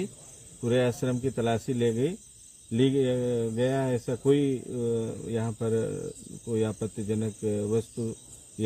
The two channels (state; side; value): identical; both; correlation 1.00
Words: पूरे आश्रम की तलाशी ली गया। ऐसा कोई यहाँ पर कोई आपत्तिजनक वस्तु